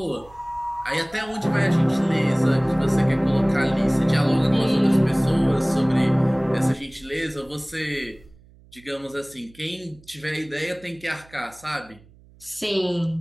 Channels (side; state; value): right; noise; hum, 26 dB below the sound